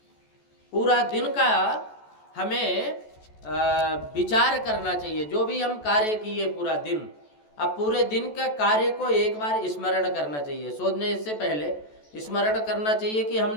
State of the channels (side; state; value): right; late; 14 ms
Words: पूरा दिन का हमें विचार करना चाहिए। जो भी हम कार्य किए पूरा दिन, अब पूरे दिन का कार्य को एक बार स्मरण करना चाहिए। सोने से पहले स्मरण करना चाहिए कि